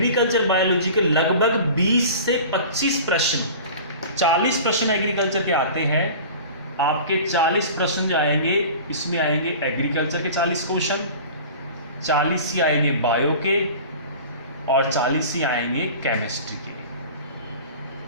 बायोलॉजी के लगभग 20 से 25 प्रश्न, 40 प्रश्न एग्रीकल्चर के आते हैं। आपके 40 प्रश्न जो आएंगे, इसमें आएंगे एग्रीकल्चर के 40 क्वेश्चन, 40 ही आएंगे बायो के, और 40 ही आएंगे केमिस्ट्री के।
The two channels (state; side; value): inverted; both; correlation -0.39